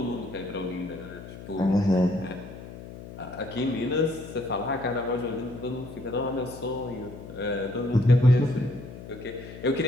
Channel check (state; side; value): noise; left; hum, 13 dB below the sound